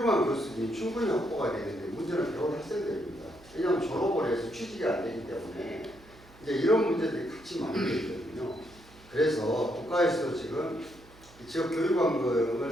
교수진이 충분히 확보가 되는데 문제는 배운 학생들입니다. 왜냐하면 졸업을 해서 취직이 안 되기 때문에 이제 이런 문제들이 같이 만들어져 있거든요. 그래서 국가에서 지금 지역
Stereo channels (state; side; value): noise; right; hum, 24 dB below the sound